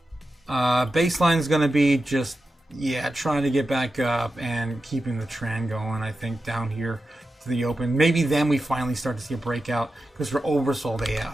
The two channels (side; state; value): both; normal; correlation 0.91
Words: Baseline is going to be just, yeah, trying to get back up and keeping the trend going, I think, down here to the open. Maybe then we finally start to see a breakout because we're oversold